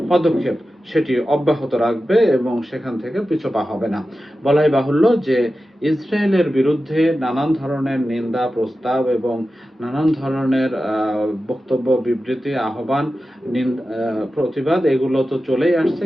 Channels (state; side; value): normal; both; correlation 0.93